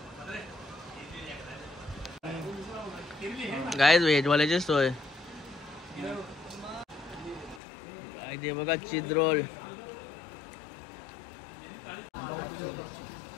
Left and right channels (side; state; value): right; drops out; at 7.6 s